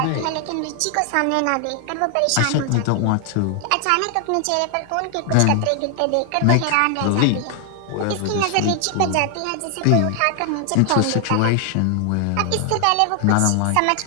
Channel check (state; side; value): different; both; correlation 0.00